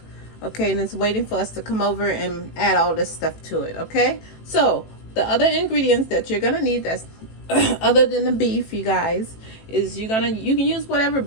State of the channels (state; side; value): late; right; 18 ms